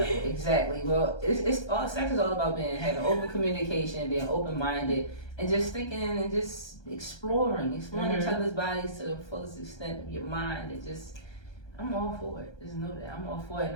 Exactly. Well, it's all sex is all about having open communication, being open minded, and just thinking and just exploring each other's bodies to the fullest extent of your mind. And just, I'm all for it. Just know that I'm all for it,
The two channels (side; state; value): right; late; 1.3 ms